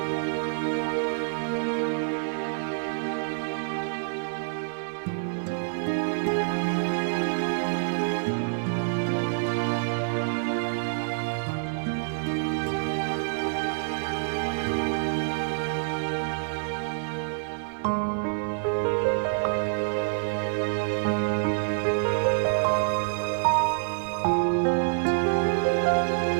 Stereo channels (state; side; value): silent; left; digital silence